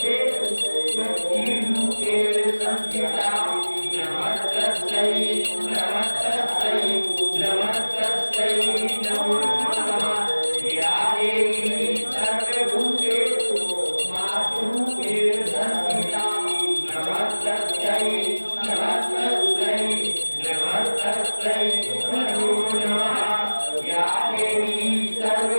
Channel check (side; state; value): both; inverted; correlation -1.00